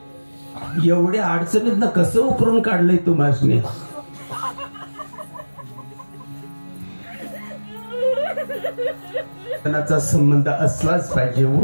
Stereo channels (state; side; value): inverted; both; correlation -1.00